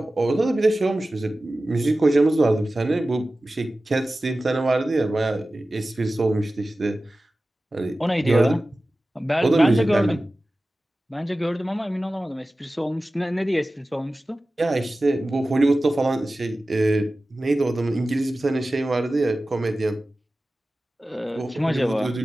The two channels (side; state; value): both; normal; correlation 0.96